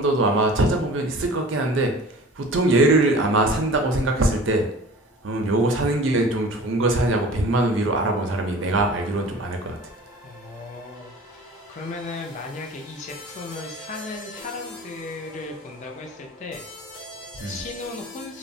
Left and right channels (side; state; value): both; normal; correlation 0.42